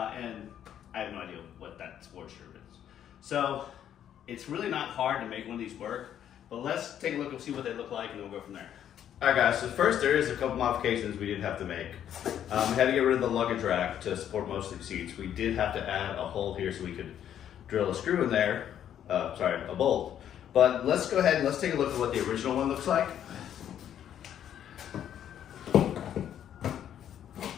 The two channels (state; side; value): quieter; right; 10.1 dB